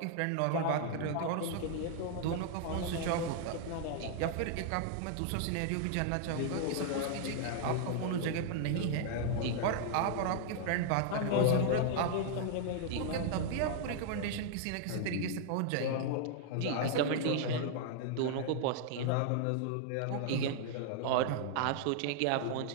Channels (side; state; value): both; different; correlation 0.00